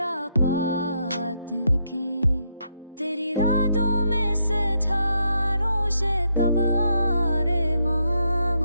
बात की। तेरी रातों में सितारों से कब आ रे माँ,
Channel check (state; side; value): inverted; both; correlation -0.78